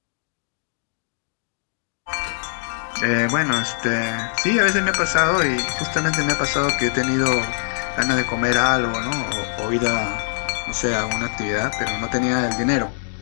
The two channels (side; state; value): right; silent; 64 dB below the other